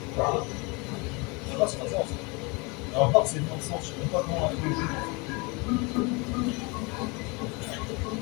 Ça va, c'est pas ça. Alors, part, c'est dans le sens, je sais même pas comment avec le jeu.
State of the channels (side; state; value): right; quieter; 28.6 dB